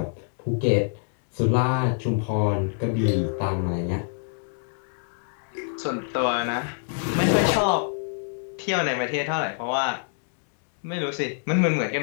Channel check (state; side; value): silent; right; digital silence